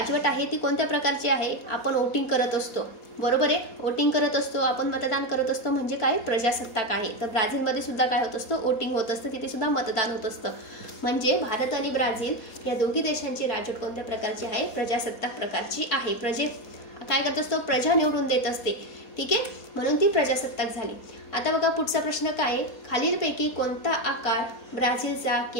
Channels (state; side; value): late; right; 4.2 ms